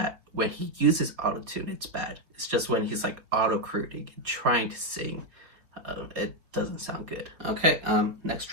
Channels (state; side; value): late; left; 4.0 ms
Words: when he uses autotune it's bad. It's just when he's like auto-crooning and trying to sing, it doesn't sound good. Okay, next